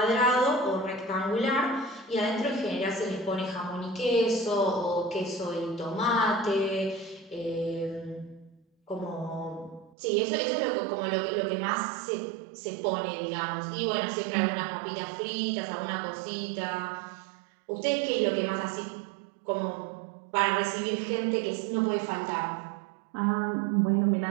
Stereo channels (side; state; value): left; drops out; at 10.0 s